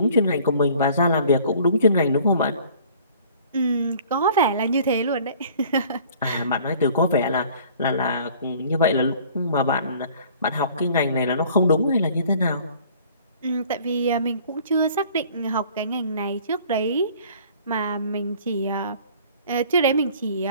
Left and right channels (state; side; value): inverted; both; correlation -0.52